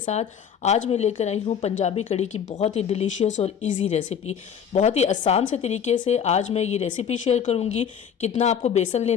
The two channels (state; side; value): quieter; right; 7.9 dB